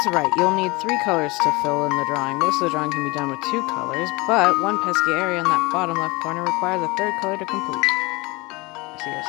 right, you'll need 3 colors to fill in the drawing. Most of the drawing can be done with 2 colors, but one pesky area in that bottom left corner requires a 3rd color to complete. I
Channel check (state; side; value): quieter; right; 24.3 dB